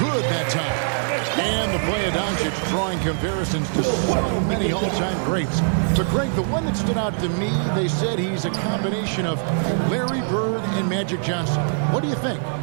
good that time. And the play of Doncic drawing comparisons to so many all-time greats. But Greg, the one that stood out to me, they said he's a combination of Larry Bird and Magic Johnson. What do you think?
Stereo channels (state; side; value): silent; left; 60 dB below the other